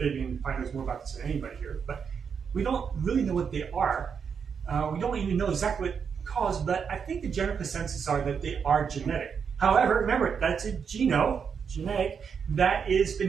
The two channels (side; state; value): left; quieter; 6.6 dB